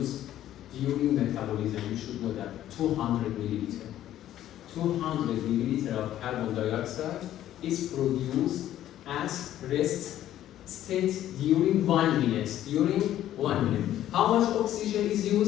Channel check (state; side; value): quieter; right; 12.4 dB